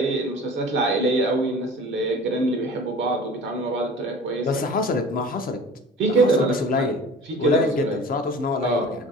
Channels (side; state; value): both; normal; correlation 0.42